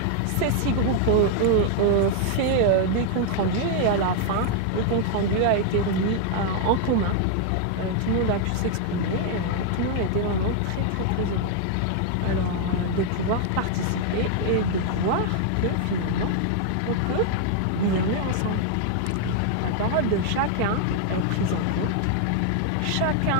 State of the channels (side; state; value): both; different; correlation 0.00